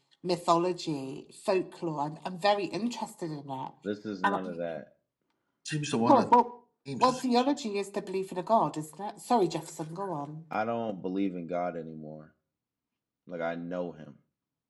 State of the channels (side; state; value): both; identical; correlation 1.00